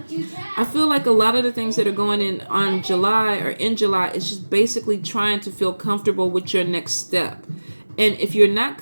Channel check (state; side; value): inverted; both; correlation -1.00